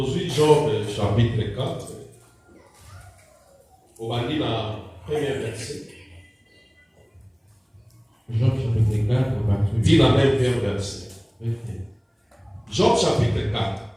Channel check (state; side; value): identical; both; correlation 1.00